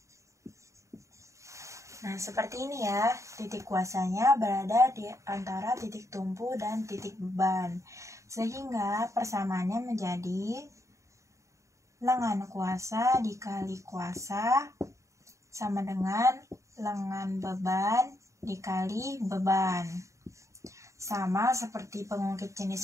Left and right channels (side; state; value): left; late; 0.15 ms